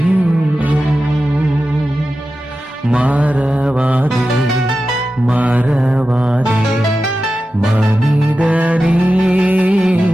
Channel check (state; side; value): normal; both; correlation 0.93